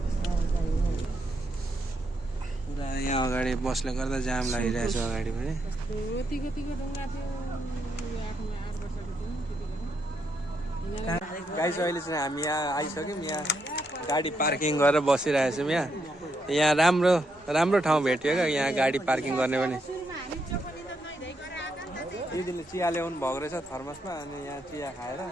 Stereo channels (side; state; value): both; normal; correlation 0.79